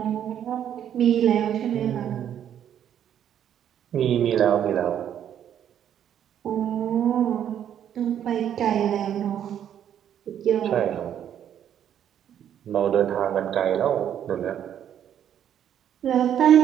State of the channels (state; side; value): quieter; left; 9.8 dB